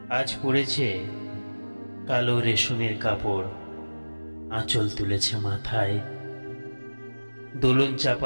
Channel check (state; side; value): inverted; both; correlation -1.00